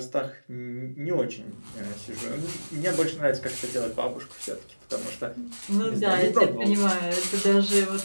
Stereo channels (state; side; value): inverted; both; correlation -1.00